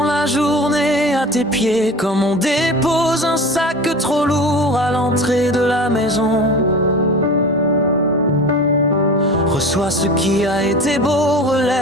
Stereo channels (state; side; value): normal; both; correlation 0.35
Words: la journée à tes pieds comme on dépose un sac trop lourd à l'entrée de la maison. Reçois ce qui a été beau,